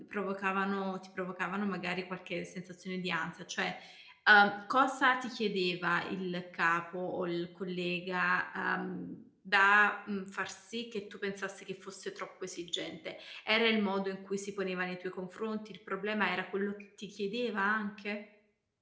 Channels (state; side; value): identical; both; correlation 1.00